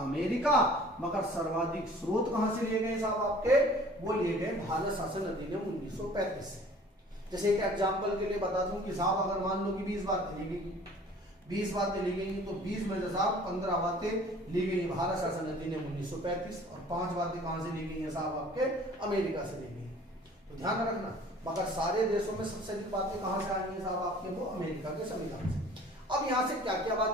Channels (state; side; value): normal; both; correlation 0.50